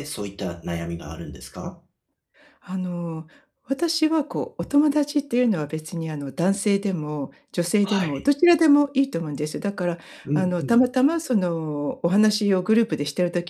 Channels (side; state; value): both; identical; correlation 1.00